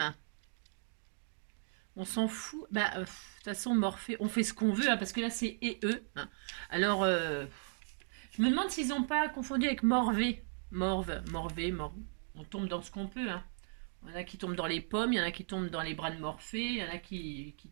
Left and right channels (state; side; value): silent; left; digital silence